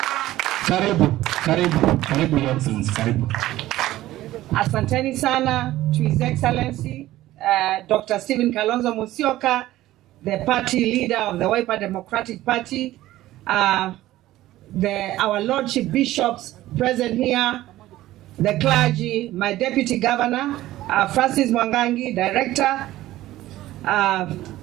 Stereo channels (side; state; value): left; quieter; 15.5 dB